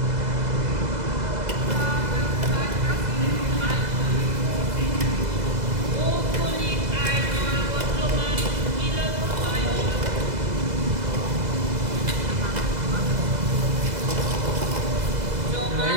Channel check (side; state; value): left; late; 2.0 ms